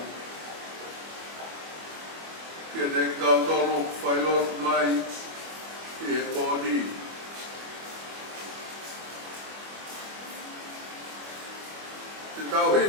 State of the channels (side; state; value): left; late; 25 ms